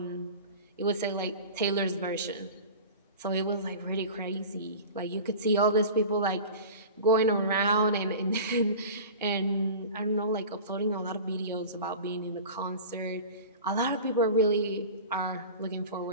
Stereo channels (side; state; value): both; inverted; correlation -0.35